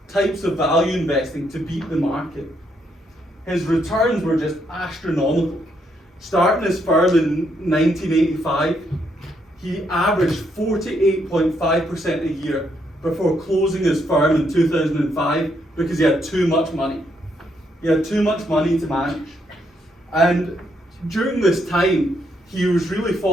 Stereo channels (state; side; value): normal; both; correlation 0.75